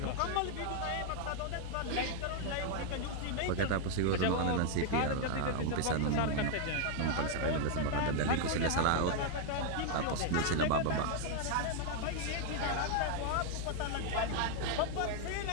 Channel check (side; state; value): both; different; correlation 0.00